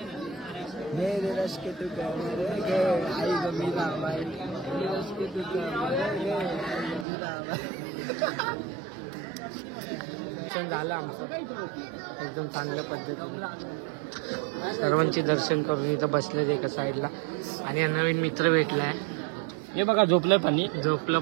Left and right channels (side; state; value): left; drops out; at 7.1 s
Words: मेरे रश के तू आई गमीला बाई. रश के तू झालं आमचं एकदम चांगल्या पद्धतीने. सर्वांचे दर्शन करून इथं बसलेत एका साईडला. आणि नवीन मित्र भेटलाय. हे बघा झोपलं पण. झोपलं